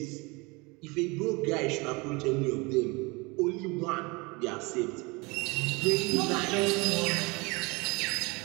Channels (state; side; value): quieter; left; 26.6 dB